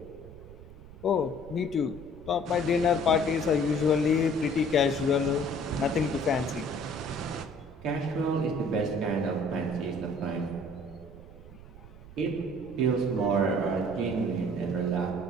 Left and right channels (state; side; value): noise; right; rumble, 18 dB below the sound